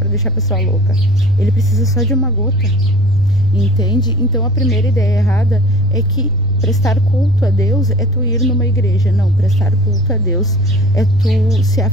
deixar a pessoa louca. Ele precisa só de uma gota, entende? Então a primeira ideia errada é que prestar culto a Deus é tu ir numa igreja. Não, prestar culto a Deus é tu se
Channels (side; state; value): right; noise; rumble, 13 dB below the sound